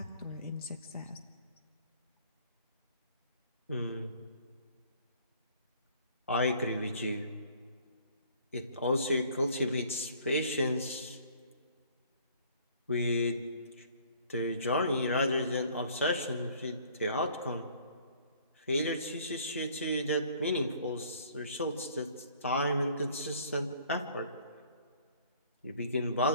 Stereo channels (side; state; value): both; inverted; correlation -0.56